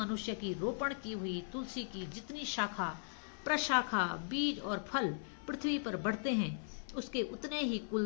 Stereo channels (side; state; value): right; silent; 52 dB below the other